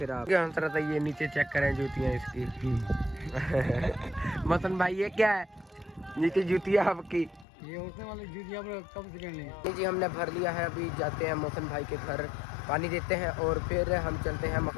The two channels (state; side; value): drops out; right; at 7.5 s